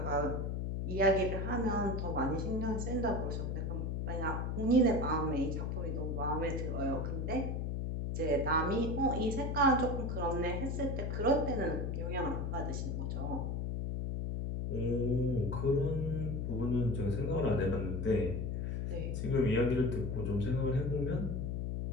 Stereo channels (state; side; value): noise; left; hum, 1 dB below the sound